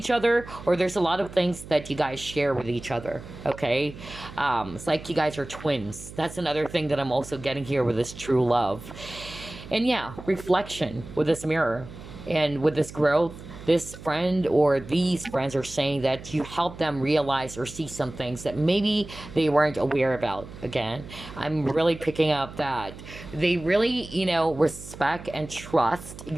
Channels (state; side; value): noise; right; hum, 15 dB below the sound